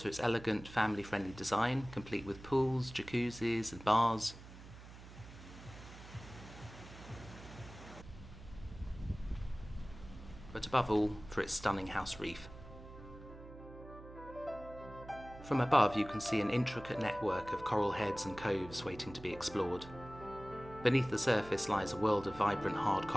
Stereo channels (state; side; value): noise; right; hum, 16 dB below the sound